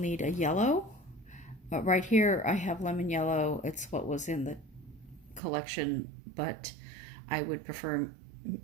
a yellow. Right here I have lemon yellow. It's what was in the collection, but I would prefer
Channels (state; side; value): drops out; left; at 5.4 s